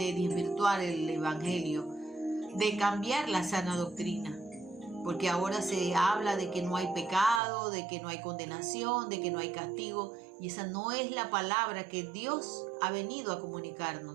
desvirtuar el evangelio, de cambiar la sana doctrina. Porque ahora se habla de que no hay pecado, de que no hay condenación, de que no hay castigo. Y esa no es la palabra que Dios ha venido a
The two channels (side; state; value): left; drops out; at 7.4 s